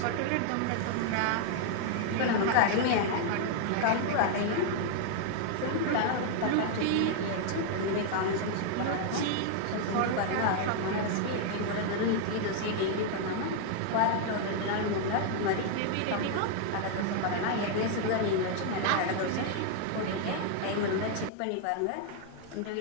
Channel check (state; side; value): different; both; correlation 0.00